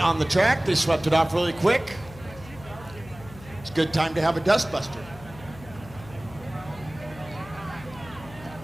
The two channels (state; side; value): noise; left; hum, 18 dB below the sound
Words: the track. They swept it off really quick. It's a good time to have a dust buster.